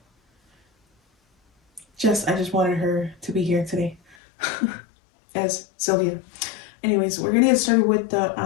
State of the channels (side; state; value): right; drops out; at 4.2 s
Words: I just wanted her to be here today as Sylvia. Anyways, we're gonna get started with the